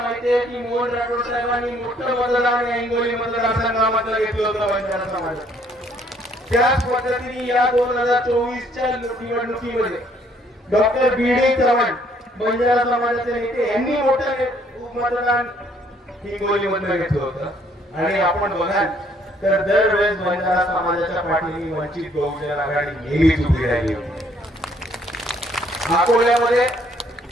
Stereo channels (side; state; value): both; normal; correlation 0.64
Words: माहिती आहे की मोहन राठोड साहेबांनी मोठं मतदान या हिंगोली मतदारसंघामध्ये घेतलं होतं बंजारा समाजात. त्याच पद्धतीने या 2024च्या निवडणुकीमध्ये डॉक्टर बी.डी. चव्हाण बंजारा समाजाचे नेते यांनी मोठं मतदान हिंगोली मध्ये घेतलं होतं आणि आपण बघाल तर दरवेळेस बंजारा समाजाच्या पाठीने वंचित बहुजन आघाडी नेहमीच उभी राहिली होती. अकोल्यामध्ये